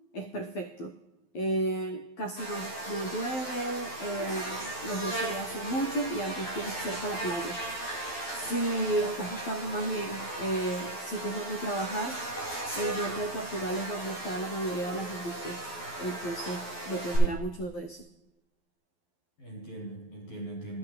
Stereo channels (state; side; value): late; right; 12 ms